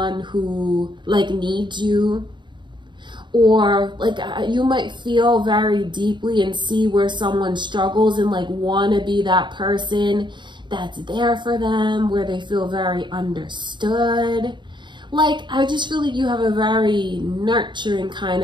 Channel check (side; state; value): left; late; 0.22 ms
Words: who like needs you, or like you might feel very deeply and see where someone struggles and like want to be that person that's there for them, where they feel very understood. Like, I just feel like you have a very nurturing kind